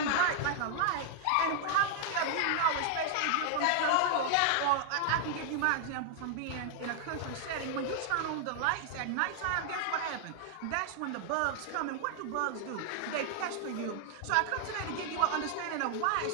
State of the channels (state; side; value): different; both; correlation 0.00